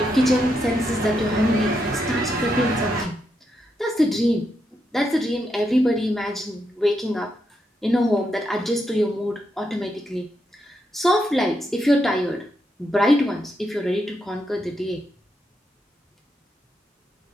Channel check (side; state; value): both; normal; correlation 0.82